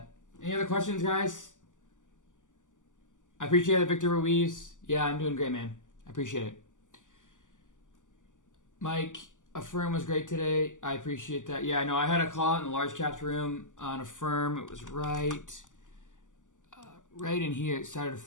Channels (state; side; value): late; right; 0.87 ms